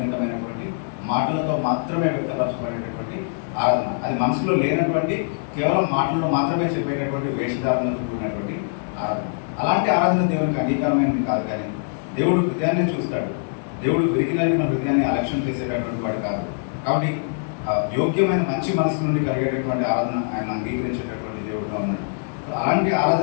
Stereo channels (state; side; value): silent; right; digital silence